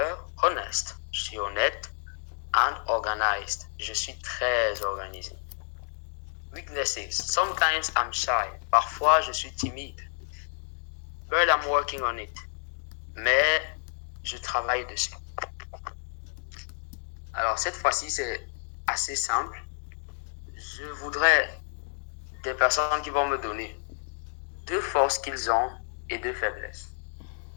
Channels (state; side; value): silent; right; digital silence